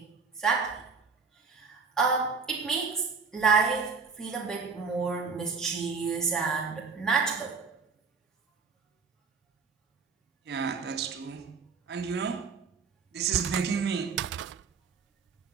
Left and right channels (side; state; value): left; quieter; 5.1 dB